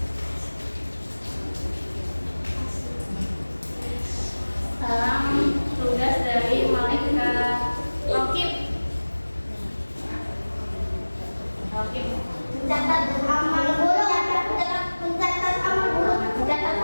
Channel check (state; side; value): inverted; both; correlation -1.00